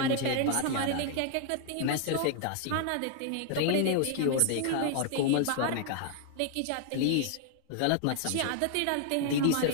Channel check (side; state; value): both; different; correlation 0.00